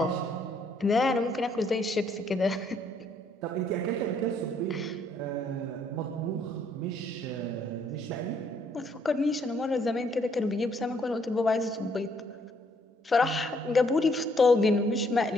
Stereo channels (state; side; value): normal; both; correlation 0.68